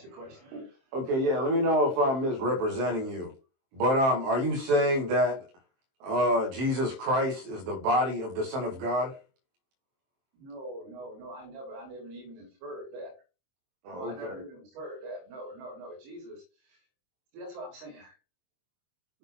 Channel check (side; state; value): left; late; 23 ms